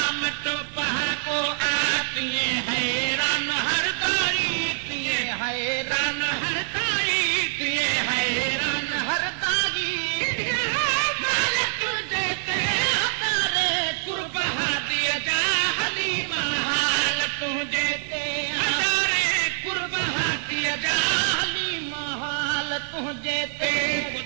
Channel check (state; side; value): silent; left; 56 dB below the other